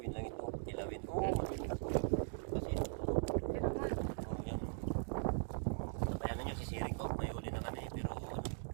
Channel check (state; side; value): silent; left; digital silence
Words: lang ito. Kilawin. Oo, magiging ito. Kasi ito. Pero nga. Oh, yan. Kaya na nyo, sisiring ko. May huli na kami. Pero